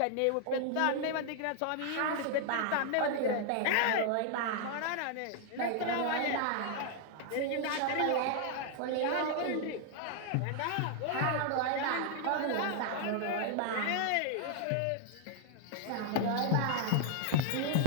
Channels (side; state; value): both; different; correlation 0.00